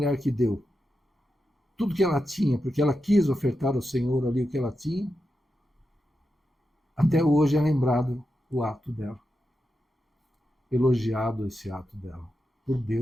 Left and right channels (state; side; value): normal; both; correlation 0.88